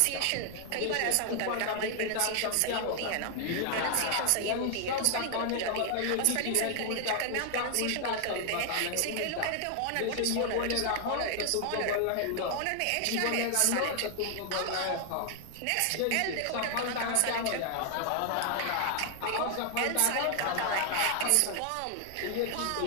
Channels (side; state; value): both; different; correlation 0.00